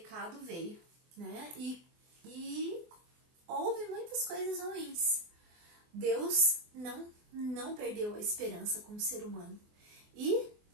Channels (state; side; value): late; left; 24 ms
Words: veio, né? E houve muitas coisas ruins. Deus não perdeu a esperança como ser humano e